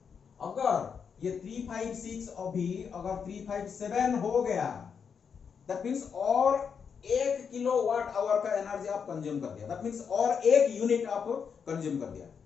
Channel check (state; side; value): quieter; right; 6.6 dB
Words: अगर ये 356 अभी अगर 357 हो गया, दैट मीन्स और 1 किलोवाट आवर का एनर्जी आप कंज्यूम कर दिया। दैट मीन्स और 1 यूनिट आप कंज्यूम कर दिया।